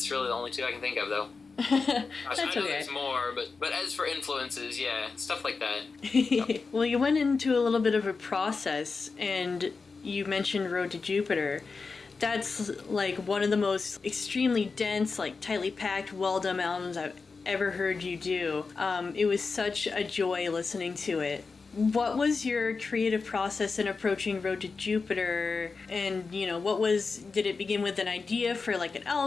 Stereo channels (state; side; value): quieter; right; 4.5 dB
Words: really the only two I can think of, though. Gosh, I know there's more, but as for influences, yeah, stuff like that. Yep. Well, you went into a little bit of a process, and you mentioned Road to Jupiter. That's like one of the most extremely dense, like tightly packed, well-done albums I've ever heard you do. It was such a joy listening to it. What was your creative process in approaching Road to Jupiter? And, did it begin with an idea for like an